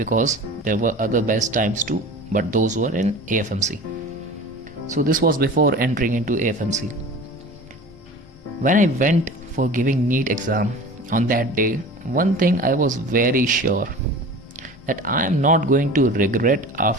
there were other best times too, but those were in AFMC. So this was before entering into AFMC. When I went for giving NEET exam on that day, one thing I was very sure, that I am not going to regret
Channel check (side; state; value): both; normal; correlation 0.38